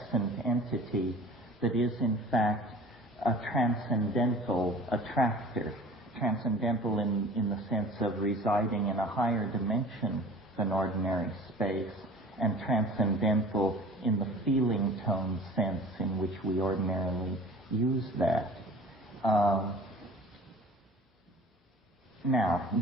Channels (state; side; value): normal; both; correlation 0.44